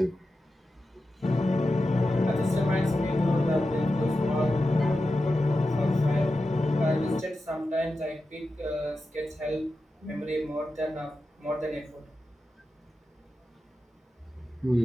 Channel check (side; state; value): both; normal; correlation 0.91